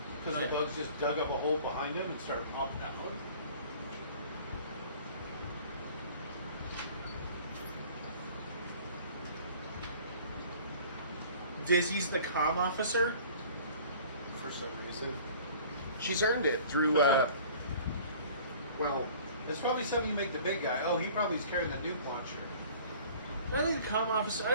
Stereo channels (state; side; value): inverted; both; correlation -0.48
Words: Because Yeah. the bugs just dug up a hole behind him and started popping out. Dizzy's the comm officer. For some reason, she's earned it through. Well, It's probably something you make the big guy. Oh, he probably is carrying the nuke launcher. I think the comm officer. I